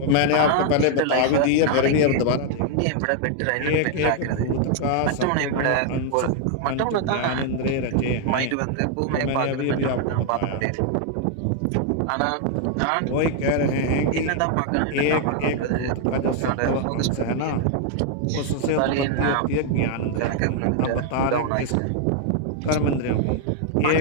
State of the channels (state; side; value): different; both; correlation 0.00